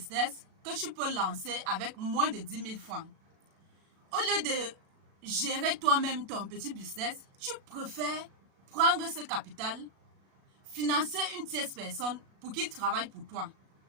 que tu peux lancer avec moins de 10 000 francs. Au lieu de gérer toi-même ton petit business, tu préfères prendre ce capital, financer une tierce personne pour qu'il travaille pour toi.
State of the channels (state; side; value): late; left; 37 ms